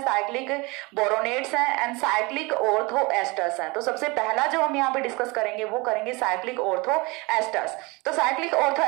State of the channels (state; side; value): quieter; left; 25.7 dB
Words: साइक्लिक बोरोनेट्स हैं एंड साइक्लिक ऑर्थो एस्टर्स हैं। तो सबसे पहला जो हम यहाँ पे डिस्कस करेंगे वो करेंगे साइक्लिक ऑर्थो एस्टर्स। तो साइक्लिक ऑर्थो